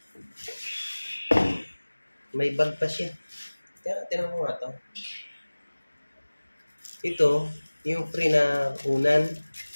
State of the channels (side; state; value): both; inverted; correlation -1.00